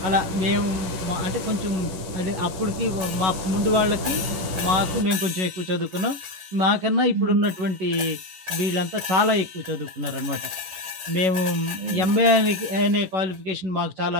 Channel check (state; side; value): late; left; 11 ms